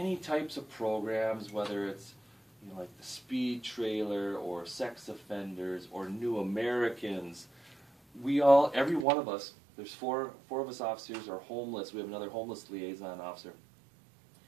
types of programs, whether it's, you know, like the speed trailer or sex offenders or new Americans, every one of us, there's four of us officers are homeless. We have another homeless liaison officer.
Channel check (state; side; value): drops out; left; at 9.1 s